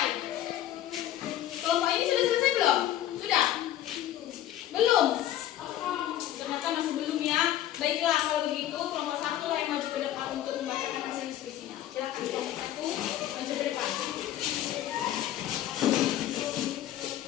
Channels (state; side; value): quieter; right; 12.6 dB